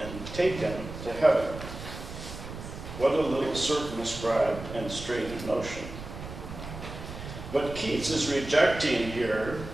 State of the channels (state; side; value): noise; right; rumble, 10 dB below the sound